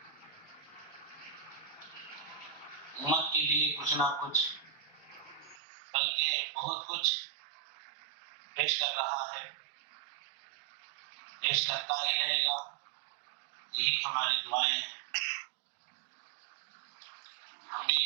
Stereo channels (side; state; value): left; drops out; at 5.6 s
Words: امت کے لیے کچھ نہ کچھ بلکہ بہت کچھ پیش کر رہا ہے، پیش کرتا ہی رہے گا، یہی ہماری دعائیں ہیں۔ ہم بھی